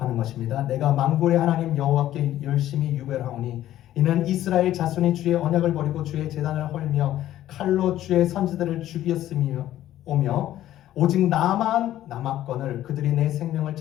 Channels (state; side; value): quieter; right; 13.1 dB